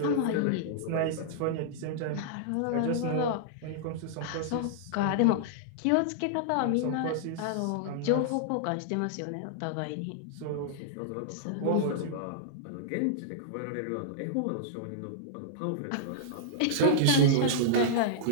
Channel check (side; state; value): both; different; correlation -0.02